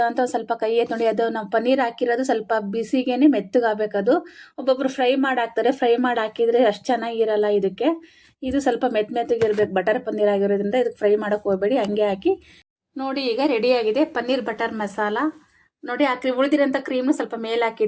ಅಂತ ಸ್ವಲ್ಪ ಕೈ ಎತ್ತಿ ನೋಡಿ. ಅದು ನಾವು ಪನ್ನೀರ್ ಹಾಕಿರೋದು ಸ್ವಲ್ಪ ಬಿಸಿಗೇನೆ ಮೆತ್ತಗಾಗಬೇಕು. ಅದು ಒಬ್ಬೊಬ್ರು ಫ್ರೈ ಮಾಡಿ ಹಾಕ್ತಾರೆ, ಫ್ರೈ ಮಾಡಿ ಹಾಕಿದರೆ ಅಷ್ಟು ಚೆನ್ನಾಗಿರಲ್ಲ. ಇದಕ್ಕೆ ಇದು ಸ್ವಲ್ಪ ಮೆತ್ತಗಿರ್ಬೇಕು. ಬಟರ್ ಪನ್ನೀರ್ ಆಗಿರೋದ್ರಿಂದ ಇದಕ್ಕೆ ಫ್ರೈ ಮಾಡೋಕ್ಕೆ ಹೋಗಬೇಡಿ, ಹಂಗೆ ಹಾಕಿ. ನೋಡಿ, ಈಗ ರೆಡಿಯಾಗಿದೆ ಪನ್ನೀರ್ ಬಟರ್ ಮಸಾಲ. ನೋಡಿ, ಉಳಿದಿರೋಂಥ ಕ್ರೀಮ್ನು ಸ್ವಲ್ಪ ಮೇಲೆ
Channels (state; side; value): identical; both; correlation 1.00